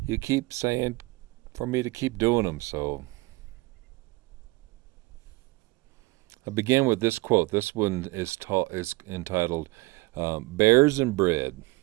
you keep saying for me to keep doing them, so I begin with this quote. This one is entitled Bears and Bread,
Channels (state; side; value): quieter; left; 22.1 dB